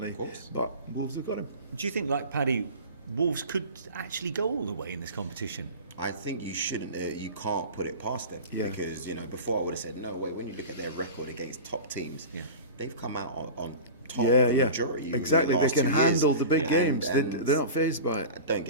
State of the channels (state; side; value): inverted; both; correlation -0.33